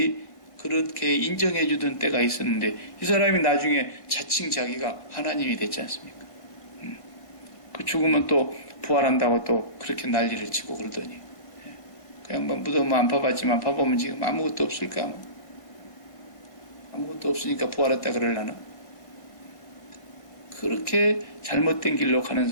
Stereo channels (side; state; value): right; late; 1.6 ms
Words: 그렇게 인정해 주던 때가 있었는데 이 사람이 나중에 자칭 자기가 하나님이 됐지 않습니까? 그 죽으면 또 부활한다고 또 그렇게 난리를 치고 그러더니 그냥 뭐 무덤 안 파봤지만 파보면 지금 아무것도 없을까? 아무것도 없으니까 부활했다 그러려나? 그렇게 잘못된 길로 가는